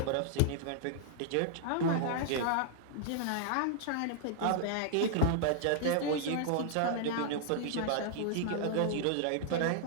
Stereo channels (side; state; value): both; different; correlation -0.01